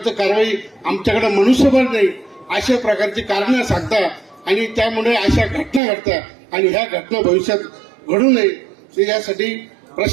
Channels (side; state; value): left; drops out; at 5.8 s